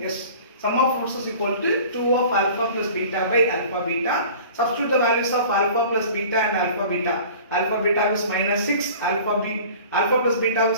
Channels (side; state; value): both; inverted; correlation -0.44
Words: Yes. Sum of roots is equal to 2 of alpha plus beta by alpha beta. Substitute the values of alpha plus beta and alpha beta. Alpha beta is minus 6, alpha plus beta